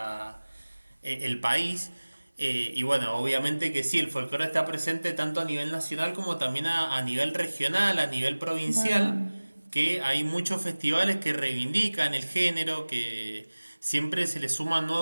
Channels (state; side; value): inverted; both; correlation -1.00